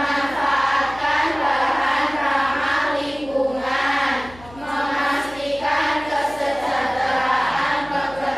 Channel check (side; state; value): left; noise; hum, 20 dB below the sound